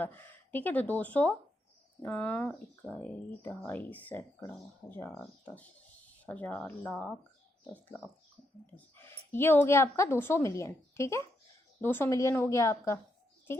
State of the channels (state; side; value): normal; both; correlation 0.80